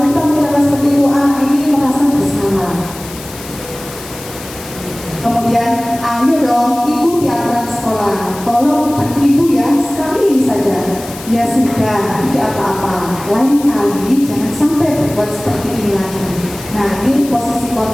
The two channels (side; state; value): left; noise; hiss, 15 dB below the sound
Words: kita mengucapkan seperti itu, anak ini merasa bersalah. Kemudian, ayo dong ikuti aturan sekolah. Tolong Ibu ya, sekali ini saja. Ya sudah, tidak apa-apa. Lain kali jangan sampai berbuat seperti ini lagi. Nah, ini posisi